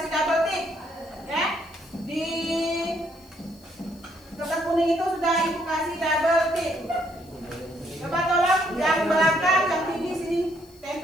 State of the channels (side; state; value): left; noise; hiss, 27 dB below the sound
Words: double tick, ya. Di kertas kuning itu sudah ibu kasih double tick. Coba tolong yang belakang, yang tinggi sini,